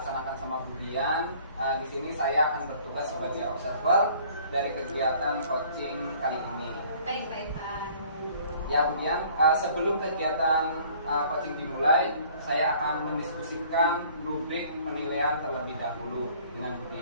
sama Bu Dian, di sini saya akan bertugas sebagai observer dari kegiatan coaching kali ini. Baik, Pak Ivan. Ya, Bu Dian, sebelum kegiatan coaching dimulai, saya akan mendiskusikan rubrik penilaian terlebih dahulu dengan Bu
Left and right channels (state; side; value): inverted; both; correlation -0.54